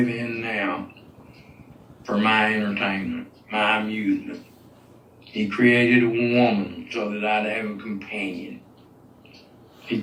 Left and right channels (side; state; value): both; identical; correlation 1.00